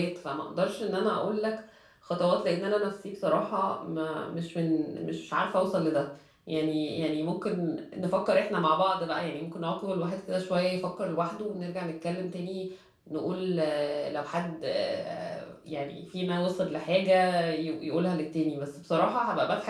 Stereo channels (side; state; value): both; identical; correlation 1.00